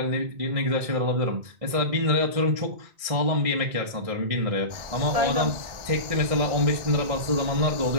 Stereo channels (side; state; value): left; late; 1.6 ms